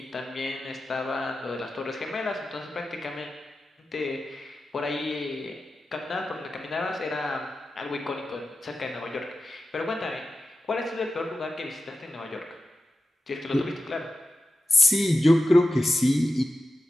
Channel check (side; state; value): both; normal; correlation 0.91